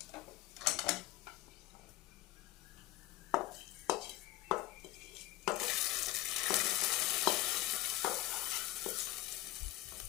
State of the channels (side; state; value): right; quieter; 16.6 dB